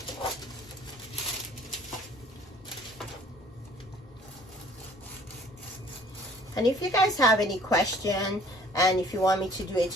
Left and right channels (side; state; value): both; normal; correlation 0.55